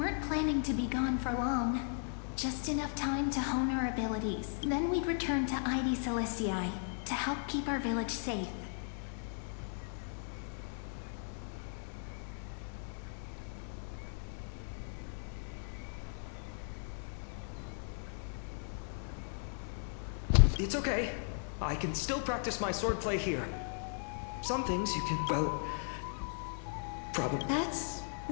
planning to be gone for long. Just enough time to hone our abilities. Then we'd return to Ide Celestii to help keep our village safe. It's okay. I can still practice my swordplay here. Some things you can, well, probably. That's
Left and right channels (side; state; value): right; silent; 53 dB below the other